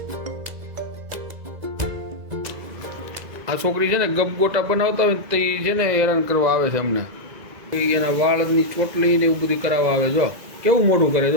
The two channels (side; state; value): left; late; 2.0 ms